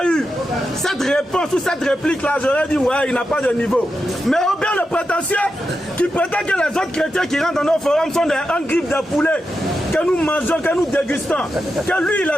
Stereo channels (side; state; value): both; normal; correlation 0.88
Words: eu cette réponse ou cette réplique-là, j'aurais dit, ouais, il n'a pas de niveau. Mais Aubin, le prétentieux, qui prétend que les autres chrétiens qui rentrent dans nos forums sont des griffes de poulet, que nous mangeons, que nous dégustons, que lui, il